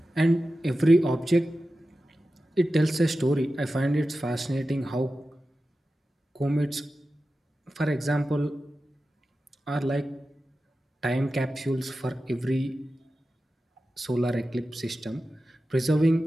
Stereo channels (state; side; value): normal; both; correlation 0.93